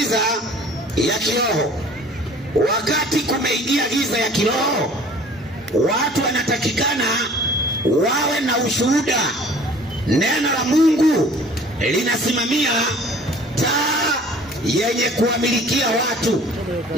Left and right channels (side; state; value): both; normal; correlation 0.49